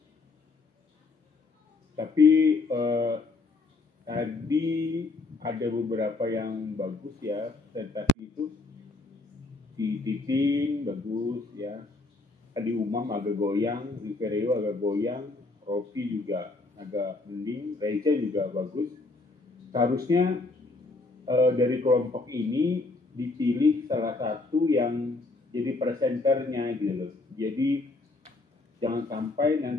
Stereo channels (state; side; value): quieter; right; 3.5 dB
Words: Tapi tadi ada beberapa yang bagus ya, presentasi itu. Si Titin bagus ya. Tadi Umam agak goyang, Rivereo agak goyang, Rofi juga agak mending, Reza juga bagus. Seharusnya dari kelompok ini dipilih salah satu yang jadi presenternya gitu loh. Jadi jangan sampai